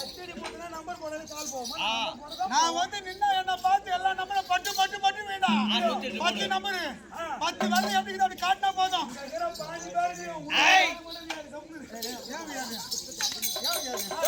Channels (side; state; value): both; identical; correlation 1.00